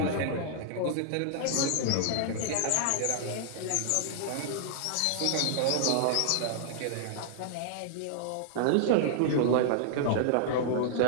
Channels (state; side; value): different; both; correlation -0.01